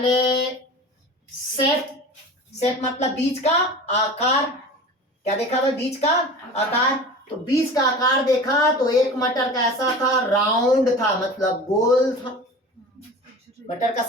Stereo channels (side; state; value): both; normal; correlation 0.36